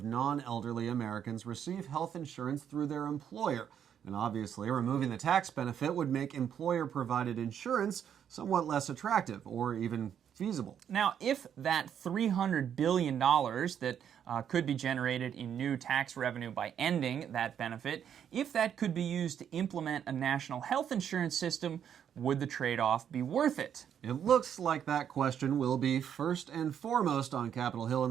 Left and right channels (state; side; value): quieter; left; 8.8 dB